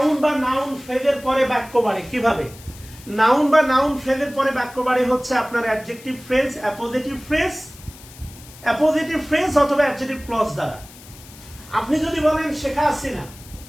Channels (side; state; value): left; noise; hiss, 20 dB below the sound